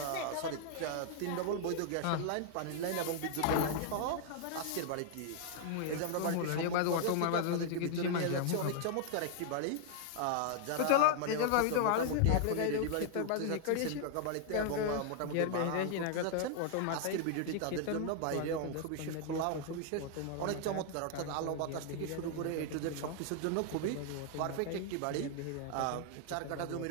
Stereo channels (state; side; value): different; both; correlation 0.00